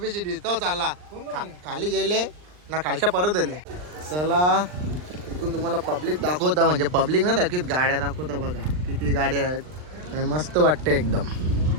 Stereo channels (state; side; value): late; left; 39 ms